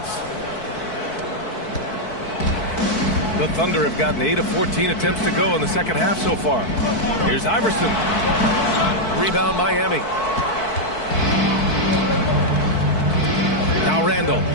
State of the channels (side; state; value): right; late; 4.6 ms